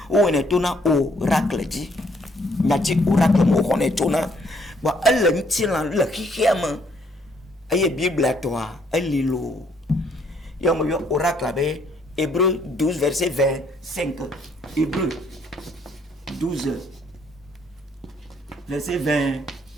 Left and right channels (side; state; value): both; normal; correlation 0.67